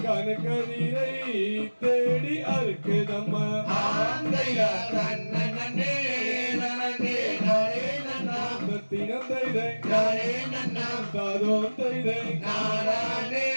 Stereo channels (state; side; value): inverted; both; correlation -1.00